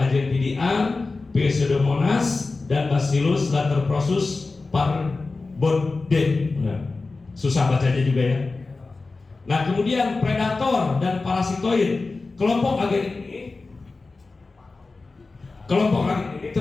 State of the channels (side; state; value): right; quieter; 3.7 dB